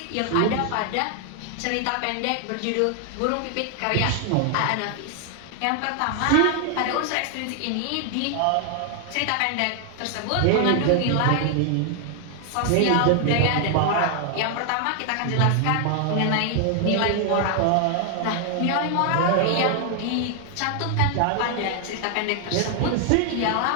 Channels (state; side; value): different; both; correlation 0.00